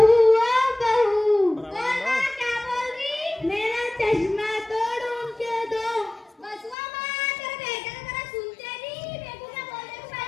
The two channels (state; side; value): drops out; right; at 6.8 s